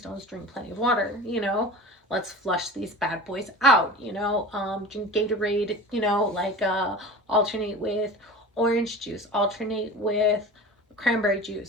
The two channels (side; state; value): both; normal; correlation 0.35